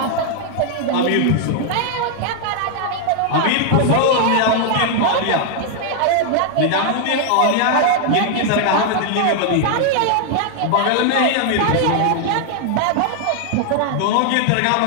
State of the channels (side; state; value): both; different; correlation 0.00